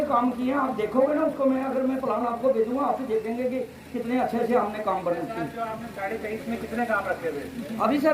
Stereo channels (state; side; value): identical; both; correlation 1.00